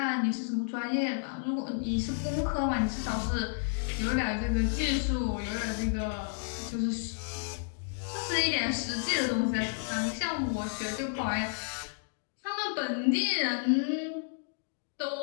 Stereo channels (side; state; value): right; silent; digital silence